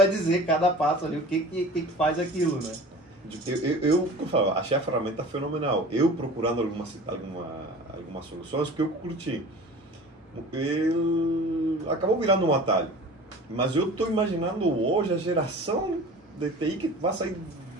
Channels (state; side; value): normal; both; correlation 0.40